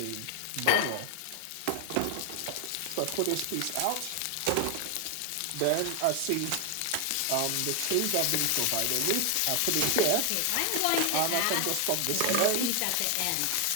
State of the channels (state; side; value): different; both; correlation 0.00